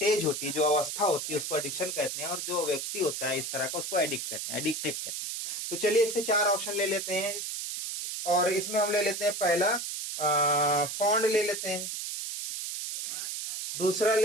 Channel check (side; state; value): right; noise; hiss, 5 dB below the sound